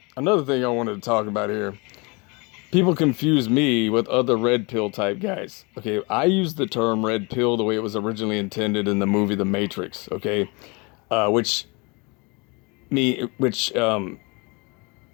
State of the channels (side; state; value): right; quieter; 29.1 dB